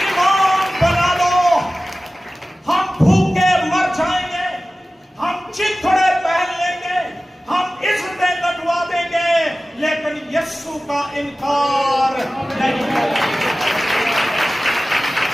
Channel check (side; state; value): both; normal; correlation 0.96